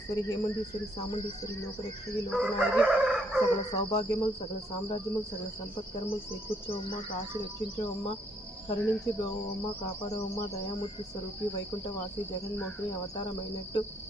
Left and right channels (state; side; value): normal; both; correlation 0.70